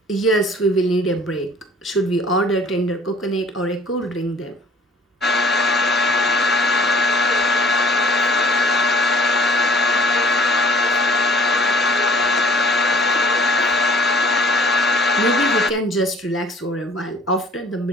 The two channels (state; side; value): normal; both; correlation 0.53